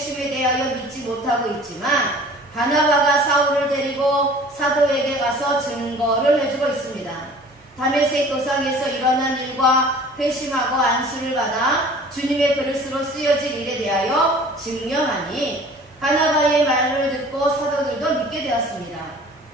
대하여 믿지 못하고 있지만 바나바가 사울을 데리고 사도에게 가서 증거를 해주고 있습니다. 다메섹 도상에서 일어난 일과 회심하고 안수를 받아 주님의 그릇으로 쓰여진 일에 대하여 증명하니 바나바의 말을 듣고 사도들도 믿게 되었습니다.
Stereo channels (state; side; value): normal; both; correlation 0.47